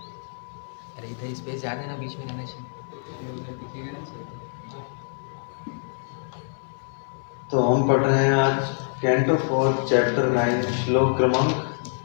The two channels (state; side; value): silent; right; 61 dB below the other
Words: अरे इधर स्पेस ज़्यादा ना, बीच में रहना चाहिए। तो हम पढ़ रहे हैं आज कैंटो 4 चैप्टर 9 श्लोक क्रमांक